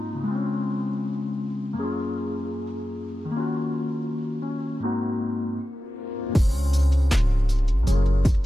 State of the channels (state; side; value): normal; both; correlation 0.93